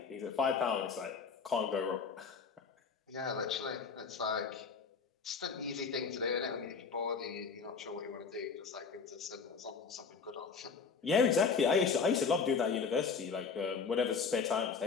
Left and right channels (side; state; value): right; quieter; 5.5 dB